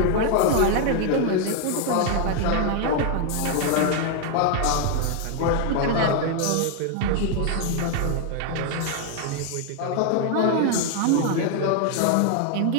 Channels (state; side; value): different; both; correlation 0.00